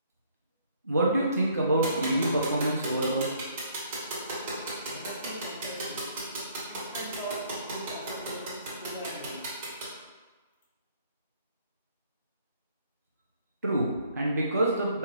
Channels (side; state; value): both; inverted; correlation -0.62